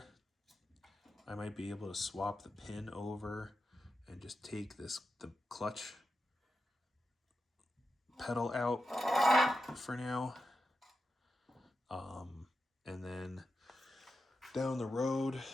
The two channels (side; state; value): both; normal; correlation 0.89